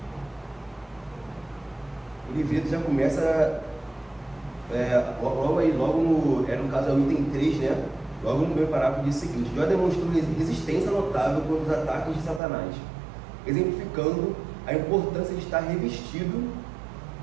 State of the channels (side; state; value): left; drops out; at 12.4 s